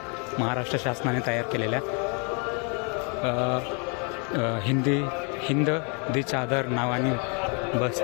महाराष्ट्र शासनाने तयार केलेल्या. हिंद दी चादर नावाने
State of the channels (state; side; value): quieter; right; 35.7 dB